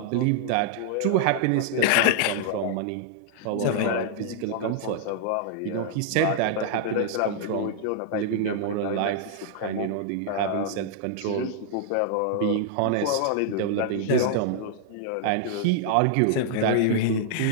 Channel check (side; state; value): both; different; correlation -0.01